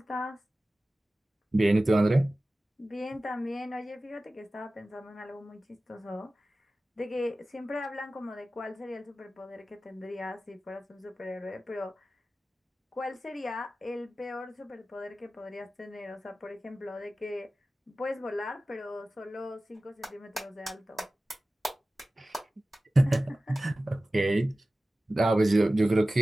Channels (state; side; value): normal; both; correlation 0.96